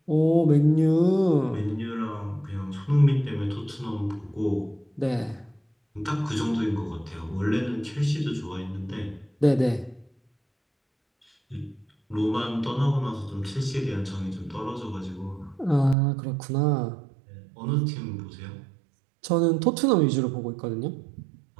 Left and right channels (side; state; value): left; drops out; at 16.0 s